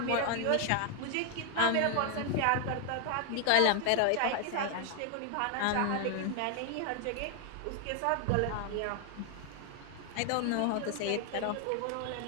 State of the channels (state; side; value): different; both; correlation 0.00